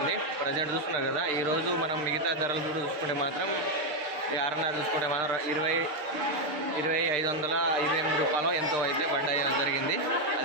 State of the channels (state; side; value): late; left; 6.6 ms